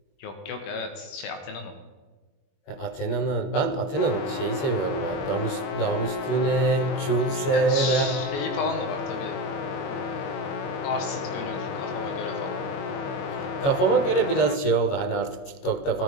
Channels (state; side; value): late; right; 21 ms